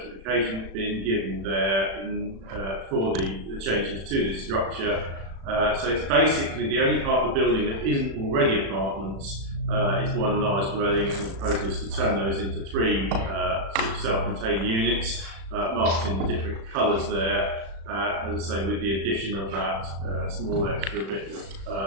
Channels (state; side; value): late; left; 36 ms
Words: has been given there for the changes to the structure. So it's basically the only part of the building that isn't already apartments is one large dwelling, and the proposal is to turn those into 3 sort of self-contained units, marked in the different colours there, as I say, with the addition of that small extra bit